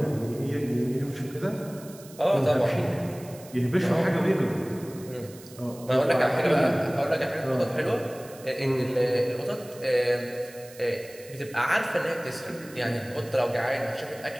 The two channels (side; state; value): right; noise; hiss, 20 dB below the sound